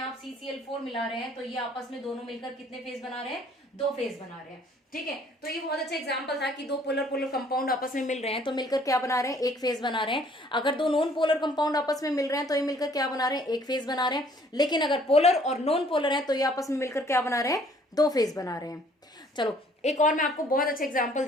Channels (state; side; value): normal; both; correlation 0.59